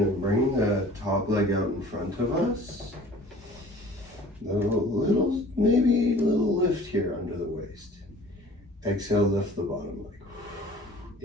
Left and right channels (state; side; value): normal; both; correlation 0.47